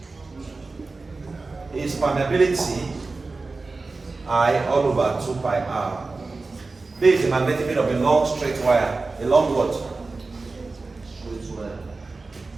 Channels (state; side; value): quieter; left; 3.7 dB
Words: is permeability I all over 2 pi r. This is the magnetic field of a long straight wire. A long what? Straight wire.